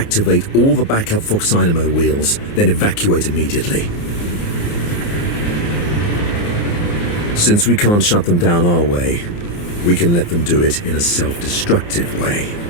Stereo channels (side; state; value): right; late; 29 ms